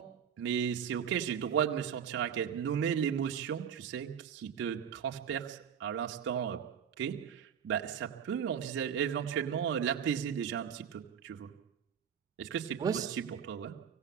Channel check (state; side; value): quieter; left; 8.1 dB